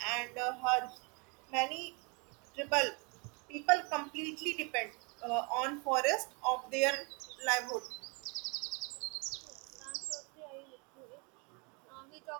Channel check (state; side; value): quieter; left; 32.2 dB